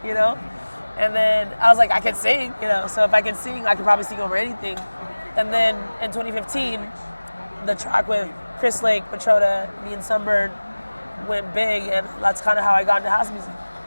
you know? And then I was like, I can sing, you know? So if I can sing, I could probably sing over anything. And then in 2015, the track with Chris Lake, Matroda, me and Sunbird went big, and that's kind of how I got into house music.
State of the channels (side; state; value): both; inverted; correlation -1.00